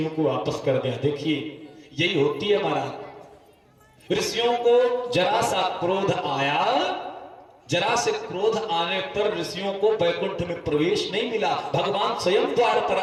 को वापस कर दिया। देखिए यही होती है महाराज, ऋषियों को जरा सा क्रोध आया, जरा से क्रोध आने पर ऋषियों को वैकुंठ में प्रवेश नहीं मिला। भगवान स्वयं द्वार पर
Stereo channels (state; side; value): identical; both; correlation 1.00